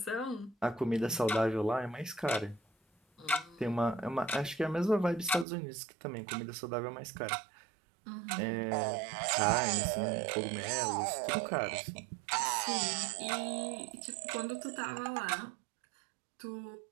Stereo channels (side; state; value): left; drops out; at 5.5 s